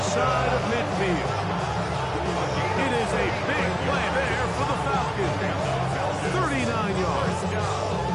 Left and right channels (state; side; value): identical; both; correlation 1.00